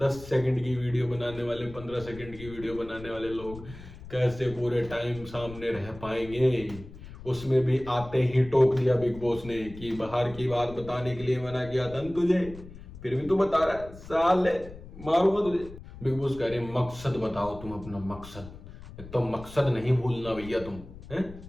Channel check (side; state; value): left; noise; rumble, 16 dB below the sound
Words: सेकंड की वीडियो बनाने वाले, 15 सेकंड की वीडियो बनाने वाले लोग कैसे पूरे टाइम सामने रह पाएंगे? उसमें भी आते ही टोक दिया बिग बॉस ने कि बाहर की बात बताने के लिए मना किया था न तुझे, फिर भी तू बता रहा है, साले मारूंगा तुझे। बिग बॉस कह रहे मकसद बताओ तुम अपना मकसद। एक तो मकसद नहीं भूलना भैया तुम, है